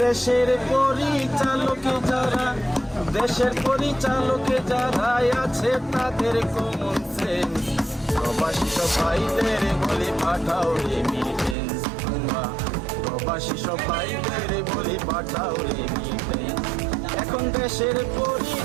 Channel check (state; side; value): drops out; left; at 11.6 s